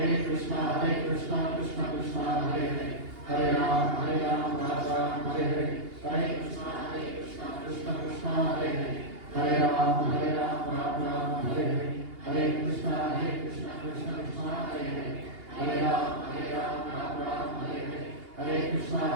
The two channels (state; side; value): late; left; 2.8 ms